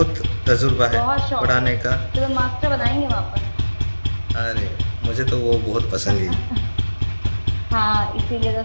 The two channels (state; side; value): inverted; both; correlation -1.00